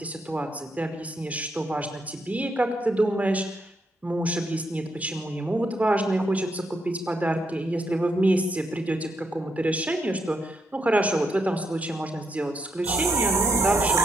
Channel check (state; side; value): normal; both; correlation 0.79